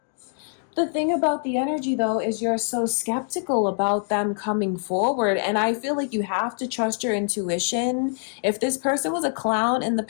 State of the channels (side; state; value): right; silent; 62 dB below the other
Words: The thing about the energy, though, is you're so skeptical about them coming forward. And I feel like you have to trust your intuition. If this person was a clown in the